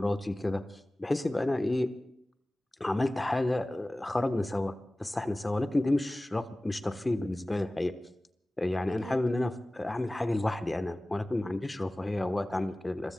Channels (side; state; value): both; normal; correlation 0.98